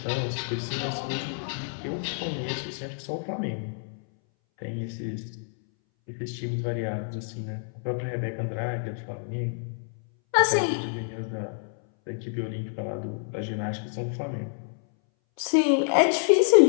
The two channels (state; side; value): silent; right; 59 dB below the other